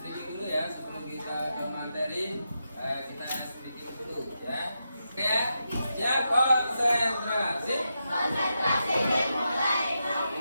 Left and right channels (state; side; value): inverted; both; correlation -0.86